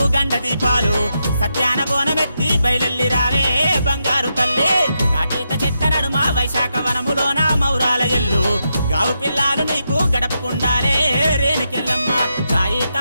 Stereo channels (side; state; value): both; inverted; correlation -0.84